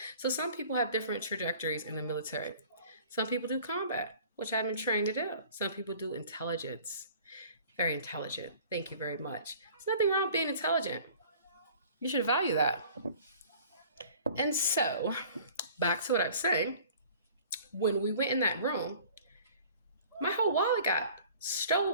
so some people have different trajectories in the military. Some people do combat, which I've been trained to do. Some people do intelligence. Very intelligent. Thank you very much. There's nothing wrong with being intelligent. You should value that. And so, back to what I was saying. When we went in that room, my whole wallet got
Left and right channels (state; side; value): inverted; both; correlation -0.48